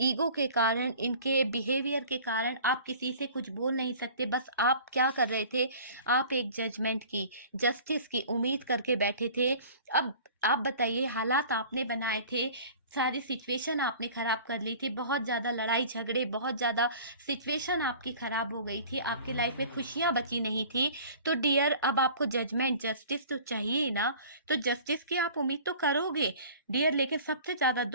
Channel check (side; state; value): both; inverted; correlation -0.45